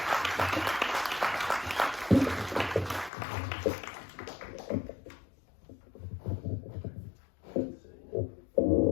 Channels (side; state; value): right; drops out; at 3.1 s